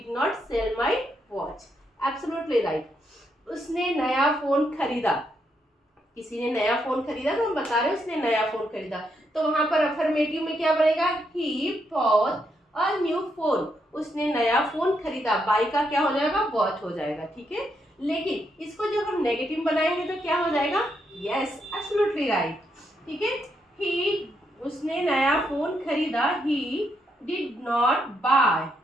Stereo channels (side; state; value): both; normal; correlation 0.79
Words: not sell my watch, absolutely right. उसने नया फोन खरीदा, किसी ने नया फोन खरीदा, तो हम बता रहे हैं उसने नया फोन खरीदा, तो वहां पर अफर्मेटिव में क्या बनेगा, he bought a new phone, उसने नया फोन खरीदा, बाई का क्या हो जाएगा, बॉट हो जाएगा, ठीक है। लेकिन इसको जब हम नेगेटिव बनाएंगे तो क्या हो जाएगा, यस एब्सोल्युटली राइट, ठीक है। ही, उसने नया फोन खरीदा, ही डिड नॉट बाय,